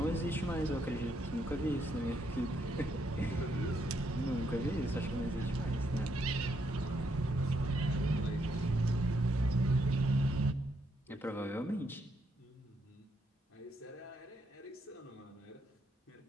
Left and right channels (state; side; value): normal; both; correlation 0.76